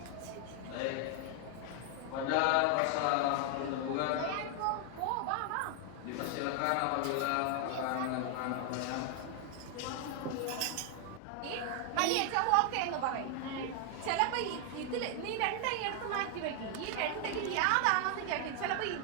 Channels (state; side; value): different; both; correlation 0.00